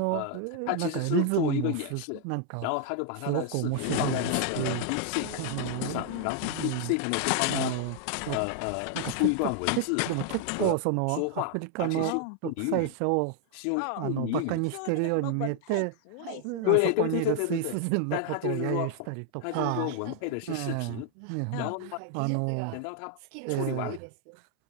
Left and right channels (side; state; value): both; different; correlation 0.00